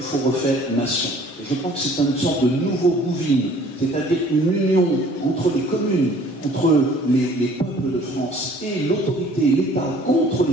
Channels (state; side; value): normal; both; correlation 0.54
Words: faut refaire nation. Et je crois que c'est une sorte de nouveau Bouvines, c'est-à-dire une union entre les communes, entre les peuples de France et l'autorité, l'État, contre